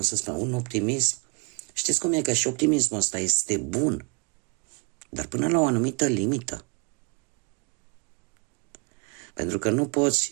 să spun, un optimism. Știți cum e, că și optimismul ăsta este bun, dar până la o anumită limită. Pentru că nu poți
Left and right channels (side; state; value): left; quieter; 33.4 dB